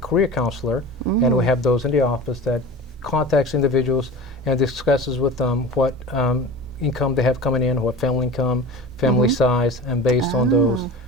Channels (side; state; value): both; normal; correlation 0.35